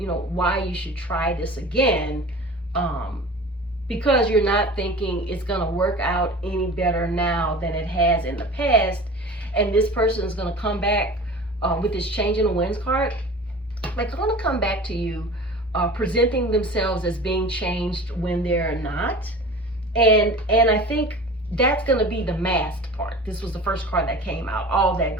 why you should try this again, because you're not thinking it's going to work out any better now than it has in the past. And this person is going to come back with this change in the winds card. They're going to come back to you presenting themselves as being changed when they're not. And I think that's going to be the masked part. This was the first card that came out, all that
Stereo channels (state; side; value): normal; both; correlation 0.38